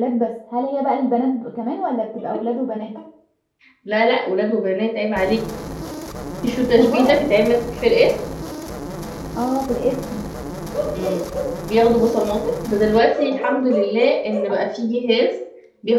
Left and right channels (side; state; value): both; identical; correlation 1.00